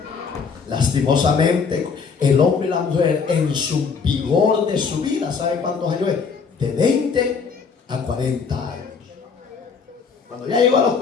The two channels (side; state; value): right; quieter; 5.6 dB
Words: Lastimosamente, el hombre y la mujer en su vigor de su vida, ¿sabe cuántos años es? De 20 a 40 años. Cuando ya llegó a los